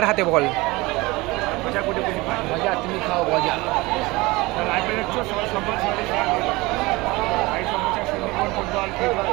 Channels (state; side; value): quieter; left; 22.2 dB